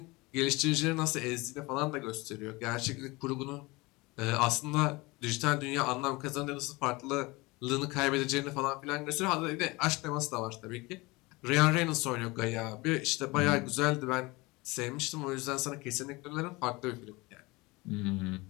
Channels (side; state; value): right; quieter; 23.4 dB